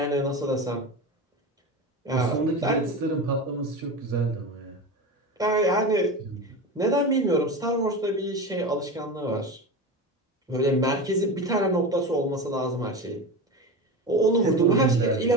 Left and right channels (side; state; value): both; normal; correlation 0.25